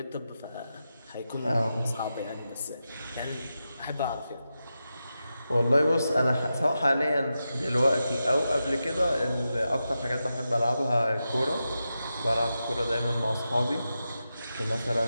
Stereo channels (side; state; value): both; inverted; correlation -0.90